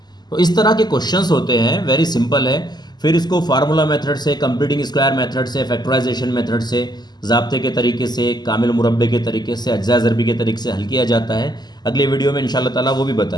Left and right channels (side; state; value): right; late; 0.20 ms